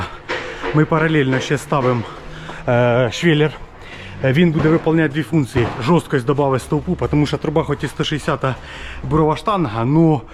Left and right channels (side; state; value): both; identical; correlation 1.00